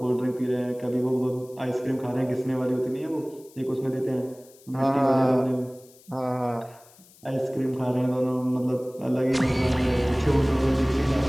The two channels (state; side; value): noise; left; hiss, 26 dB below the sound